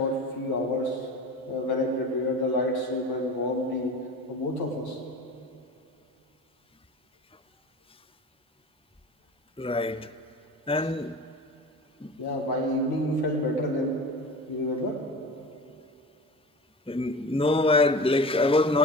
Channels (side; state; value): both; normal; correlation 0.34